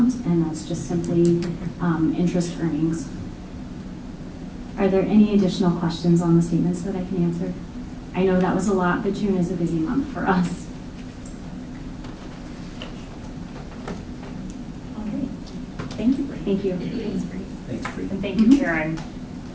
and that's just simply interest earnings. Are there any additional questions on the statements that I can answer? I know that was a lot, but June is a busy month for us. Okay. Thank you, Bree. Thank you. Thanks, Bree. Thanks, Bree. And thank you, Karen,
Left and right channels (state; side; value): identical; both; correlation 1.00